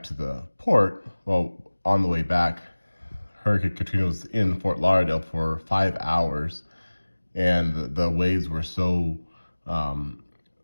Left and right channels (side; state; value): both; inverted; correlation -1.00